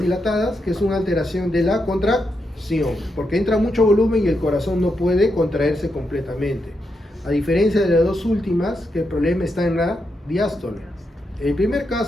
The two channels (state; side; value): normal; both; correlation 0.83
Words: dilatadas? Que es una alteración de la contracción, porque entra mucho volumen y el corazón no puede contraerse completamente. A diferencia de las dos últimas, que el problema está en la diástole. En el primer